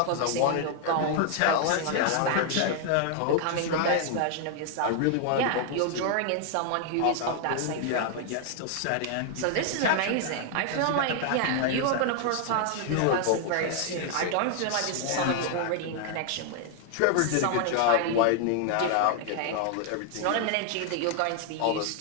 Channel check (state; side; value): different; both; correlation 0.00